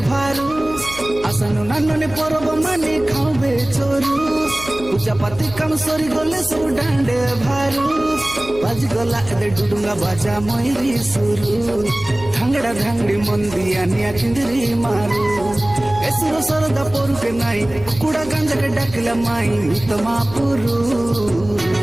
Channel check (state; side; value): noise; right; hum, 15 dB below the sound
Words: भारू आसनु नानुनी परब मानी खावे चोरू पूजा पाती काम सरी गले सब डांडे भारू बाज गला एदे डुडुंगा बाजा मयरी सुरू धांगड़ा धांगड़ी मंदिया निया किंदरी मारू एसुर सरदा पोरू के नाई कुड़ा गांजा के डाकिला माई तमा पुरू